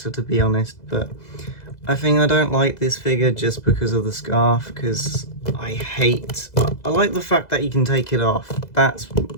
to be honest, but I think I don't like this figure just because of the scarf, because I like the fact that you can take it off. That's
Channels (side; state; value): right; late; 2.0 ms